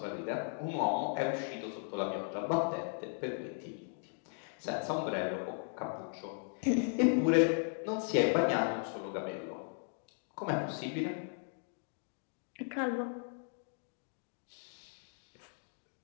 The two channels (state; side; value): silent; right; 53 dB below the other